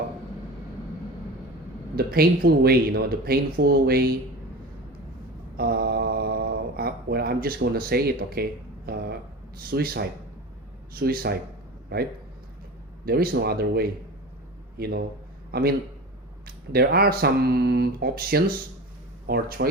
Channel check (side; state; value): both; normal; correlation 0.32